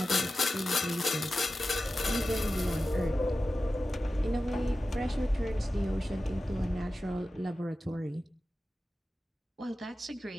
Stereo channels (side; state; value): both; normal; correlation 0.93